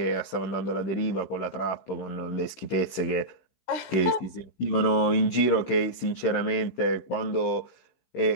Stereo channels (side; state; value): right; late; 15 ms